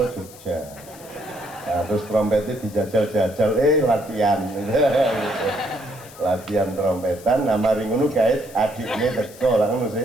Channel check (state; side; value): noise; left; hiss, 20 dB below the sound